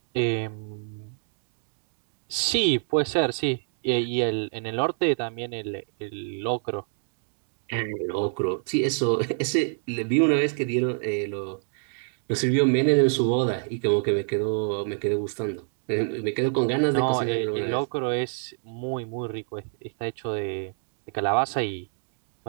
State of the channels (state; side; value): silent; left; digital silence